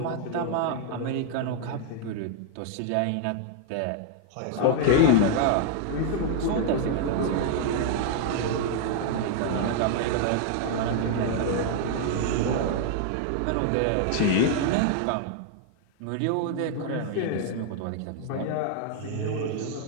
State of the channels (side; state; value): both; different; correlation 0.00